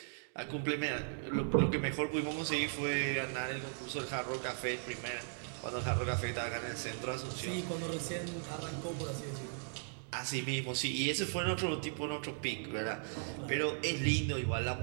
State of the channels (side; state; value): left; silent; digital silence